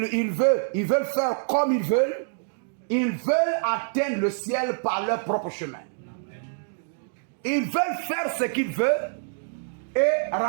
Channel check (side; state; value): left; silent; digital silence